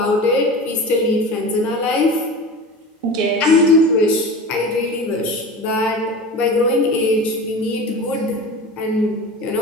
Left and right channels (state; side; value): normal; both; correlation 0.32